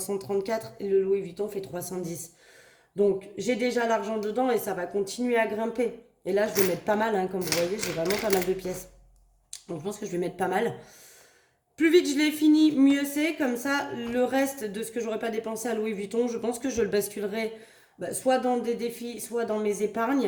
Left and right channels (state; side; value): identical; both; correlation 1.00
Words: et le Louis Vuitton fait 310. Donc, j'ai déjà l'argent dedans et ça va continuer à grimper. Et là, je vais mettre pas mal, hein, comme vous voyez, j'ai vraiment pas mal de pièces. Donc, je pense que je vais mettre pas mal. Plus vite je l'ai fini, mieux c'est. Comme ça, le reste de ce que j'aurais pas dépensé à Louis Vuitton, je pense que je le basculerai soit dans des défis, soit dans mes